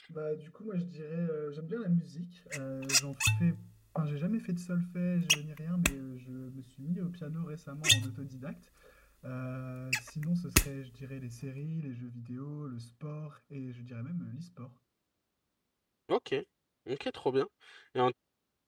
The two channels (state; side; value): identical; both; correlation 1.00